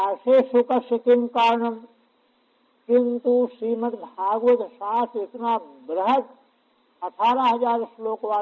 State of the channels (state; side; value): identical; both; correlation 1.00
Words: सुखस्य किम कारणम। किंतु श्रीमद् भागवत शास्त्र इतना बृहद 18,000 श्लोक